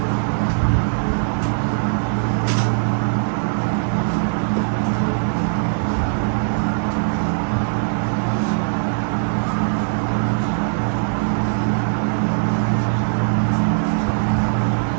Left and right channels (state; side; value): silent; left; digital silence